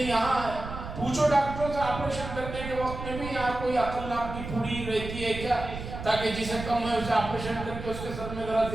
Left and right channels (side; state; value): right; noise; rumble, 9 dB below the sound